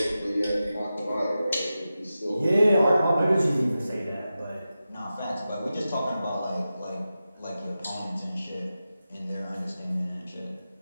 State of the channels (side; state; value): both; inverted; correlation -0.92